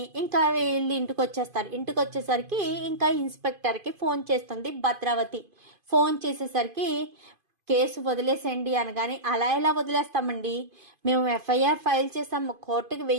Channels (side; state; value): left; late; 2.5 ms